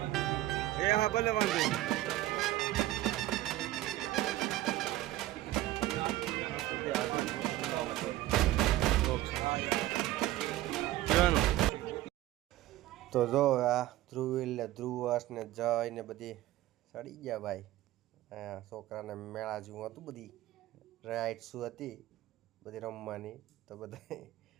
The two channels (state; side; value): quieter; left; 15.5 dB